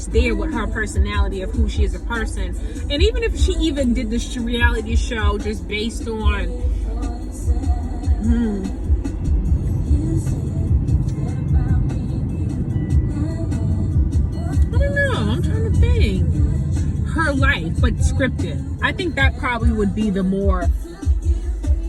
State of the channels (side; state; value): both; identical; correlation 1.00